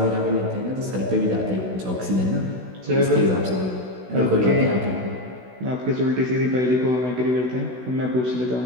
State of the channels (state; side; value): late; left; 16 ms